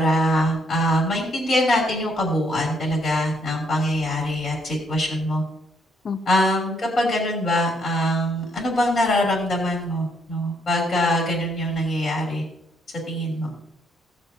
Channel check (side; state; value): both; normal; correlation 0.71